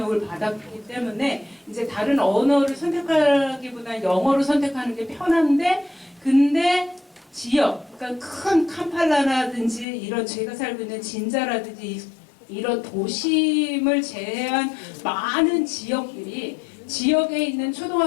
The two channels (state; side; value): drops out; right; at 9.9 s